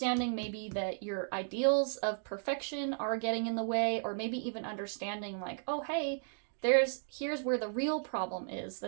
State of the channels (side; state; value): left; silent; digital silence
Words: maybe that your ideals of perfection are getting in the way, or maybe even understanding like, oh, hey, here's where the real problem is